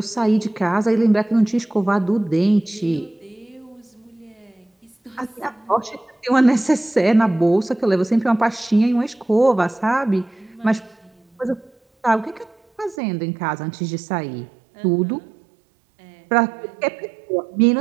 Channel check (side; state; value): left; drops out; at 13.0 s